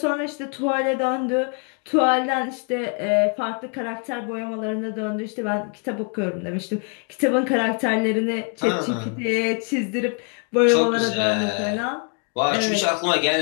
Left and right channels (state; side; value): quieter; right; 37.1 dB